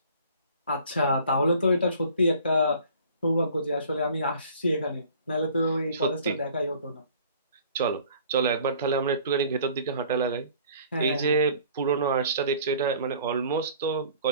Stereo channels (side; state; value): both; inverted; correlation -0.51